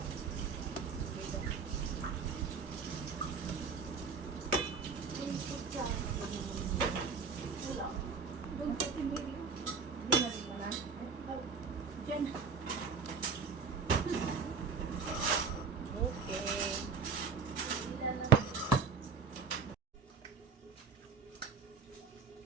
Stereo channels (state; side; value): quieter; left; 5.5 dB